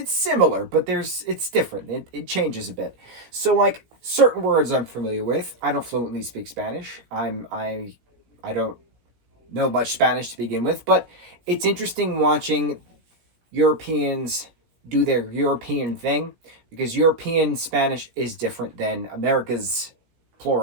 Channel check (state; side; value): late; left; 17 ms